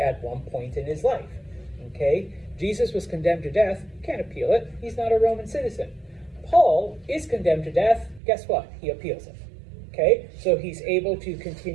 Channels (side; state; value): left; drops out; at 8.2 s